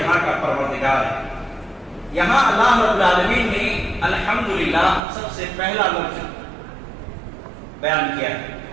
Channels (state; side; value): drops out; left; at 5.0 s